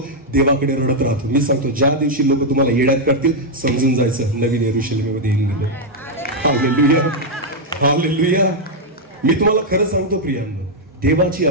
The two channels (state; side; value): normal; both; correlation -0.01